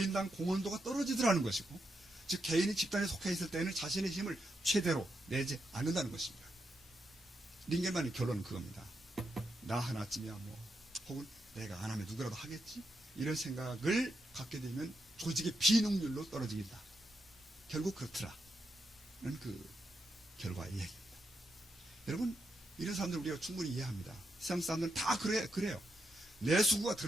공헌도가 떨어지더라는 것이고, 즉 개인이 집단에 속해 있을 때는 자신의 힘을 최대로 내지 않는다는 것입니다. 링겔만의 결론은 그겁니다. 나 하나쯤이야 뭐, 혹은 내가 안 하면 누구라도 하겠지? 이런 생각을 갖게 되면 조직의 비능률로 떨어지겠다. 결국 그렇더라는 그 결과의 얘기입니다. 여러분, 이런 사람들 우리가 충분히 이해합니다. 세상 사람들은 다 그래요. 내 수구가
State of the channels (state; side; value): normal; both; correlation 0.83